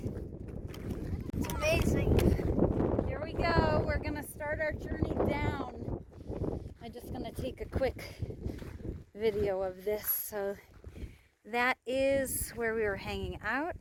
It's amazing. Here we go. We're gonna start our journey down. I'm just gonna take a quick video of this. So that is where we were hanging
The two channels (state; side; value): identical; both; correlation 1.00